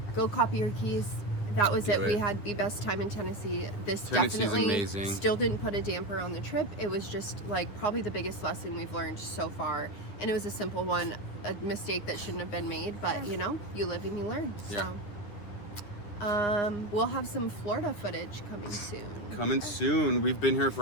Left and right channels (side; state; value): right; late; 10 ms